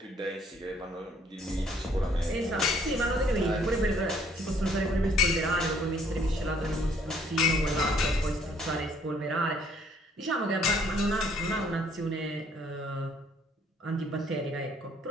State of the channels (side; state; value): both; normal; correlation 0.63